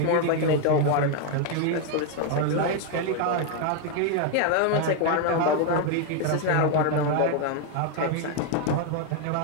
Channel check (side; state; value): both; different; correlation 0.00